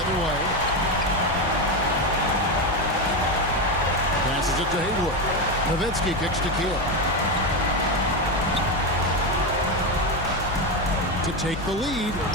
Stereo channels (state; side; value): normal; both; correlation 0.13